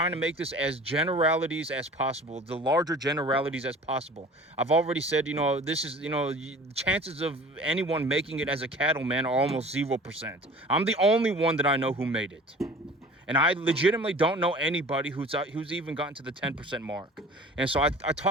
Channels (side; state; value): both; normal; correlation 0.44